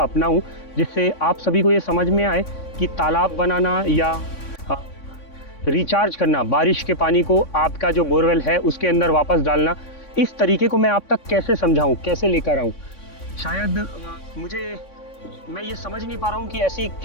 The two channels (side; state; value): right; late; 3.6 ms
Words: अपनाऊँ जिससे आप सभी को ये समझ में आए कि तालाब बनाना या रिचार्ज करना, बारिश के पानी को आपका जो बोरवेल है उसके अंदर वापस डालना, इस तरीके को मैं आप तक कैसे समझाऊँ, कैसे लेकर आऊँ। शायद मैं ये समझ नहीं पा रहा हूँ कि ऐसी